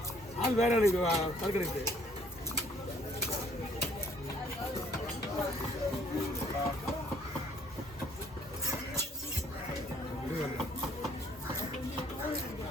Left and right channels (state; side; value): normal; both; correlation 0.61